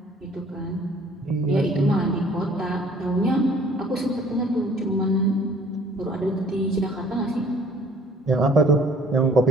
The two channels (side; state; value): both; normal; correlation 0.55